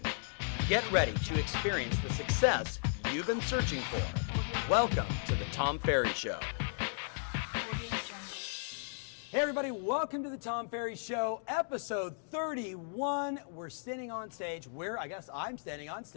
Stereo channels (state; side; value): silent; right; digital silence